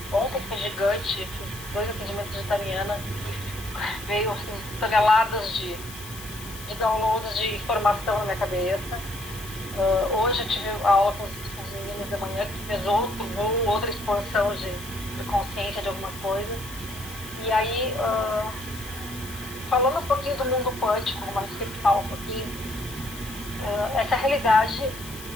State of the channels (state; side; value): noise; left; hiss, 14 dB below the sound